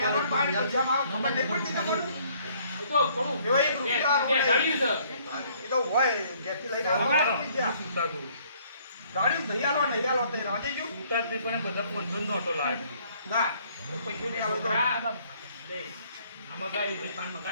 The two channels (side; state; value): both; inverted; correlation -0.62